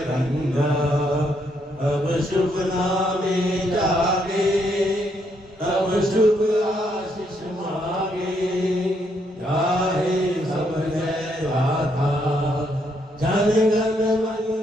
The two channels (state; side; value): normal; both; correlation 0.74